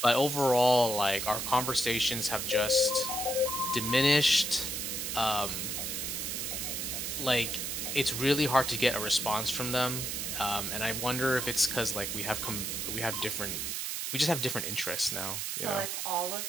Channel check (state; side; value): noise; right; hiss, 3 dB below the sound